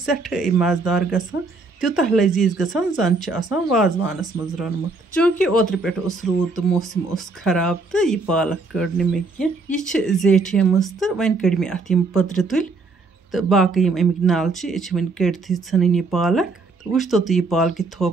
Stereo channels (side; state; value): left; quieter; 3.7 dB